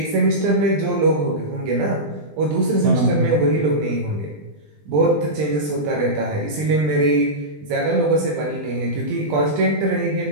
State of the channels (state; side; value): late; left; 20 ms